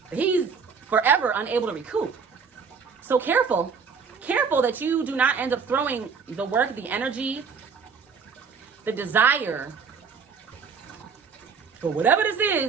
He's forever unable to recoup. So careful that you do not end up throwing the work, the energy, the desire for whatever this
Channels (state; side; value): quieter; left; 5.8 dB